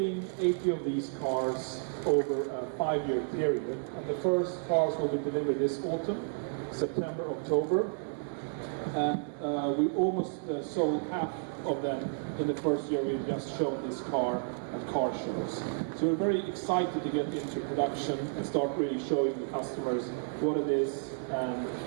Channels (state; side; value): silent; left; digital silence